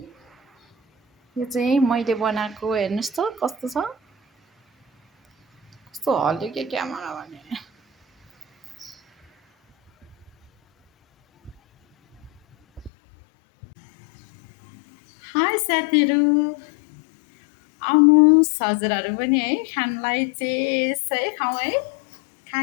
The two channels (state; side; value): drops out; right; at 12.9 s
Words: यो चाहिँ मैले बनाएको हेर्नुहोस् त कस्तो छ कस्तो हल्यो के क्यामेरा भने हाई साथीहरू आउनुहोस् हजुरहरू पनि है खानलाई चेस है खाउँ है